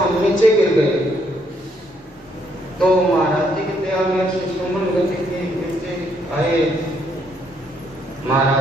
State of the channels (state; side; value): normal; both; correlation 0.72